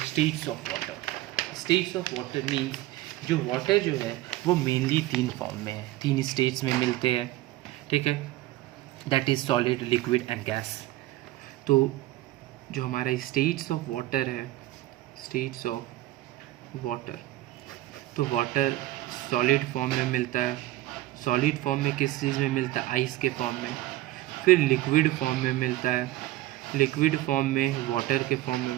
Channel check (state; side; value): quieter; left; 16.6 dB